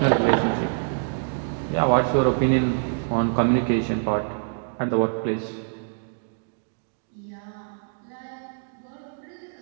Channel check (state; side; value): silent; left; digital silence